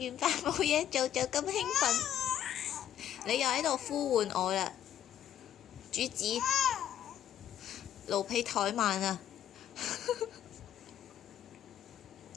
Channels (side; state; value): right; quieter; 10.7 dB